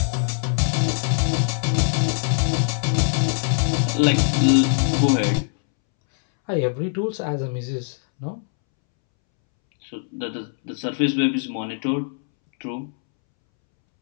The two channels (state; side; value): silent; right; 64 dB below the other